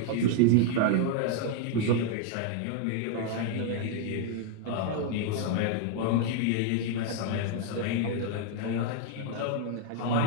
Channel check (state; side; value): different; both; correlation 0.00